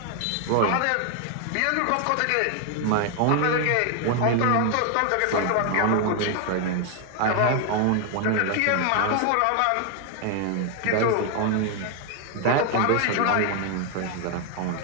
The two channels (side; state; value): both; different; correlation 0.00